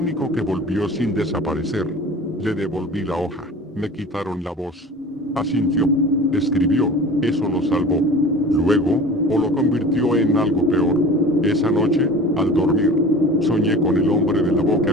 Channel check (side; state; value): both; normal; correlation 0.39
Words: que volvió sin desaparecer. Le devolví la hoja, me quitaron la voz. Asintió. Escribió, eso lo salvó. Luego, o lo convirtió en algo peor. Esa noche, al dormir, soñé con el hombre de la